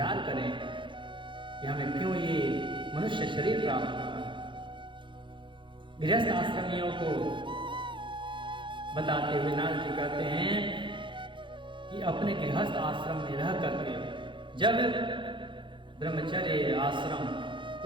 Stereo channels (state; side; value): late; left; 0.23 ms